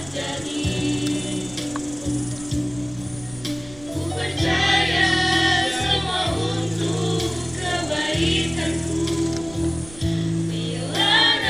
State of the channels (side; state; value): right; noise; rumble, 19 dB below the sound